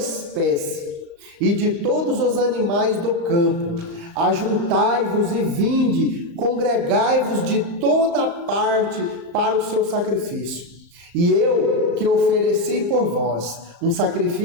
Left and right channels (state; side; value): late; left; 35 ms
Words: e de todos os animais do campo: Ajuntai-vos e vinde, congregai-vos de toda parte para o seu sacrifício. E eu que ofereci por vós um